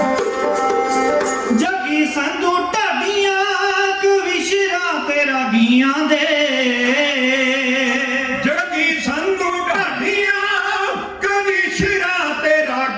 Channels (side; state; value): both; identical; correlation 1.00